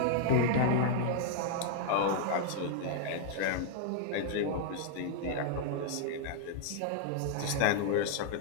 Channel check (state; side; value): different; both; correlation -0.01